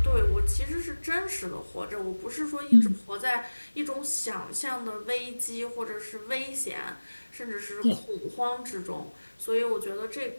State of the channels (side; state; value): both; inverted; correlation -1.00